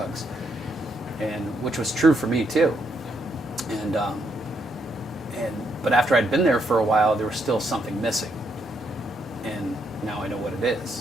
and which was true for me too. But after I'd been there for a while, there was still something missing, and now I know what it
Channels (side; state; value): both; normal; correlation 0.76